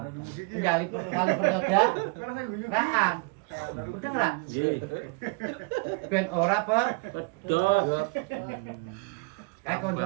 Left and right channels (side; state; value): left; quieter; 32.0 dB